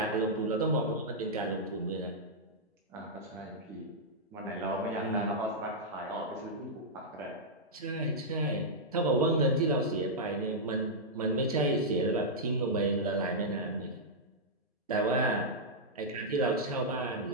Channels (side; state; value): both; normal; correlation -0.08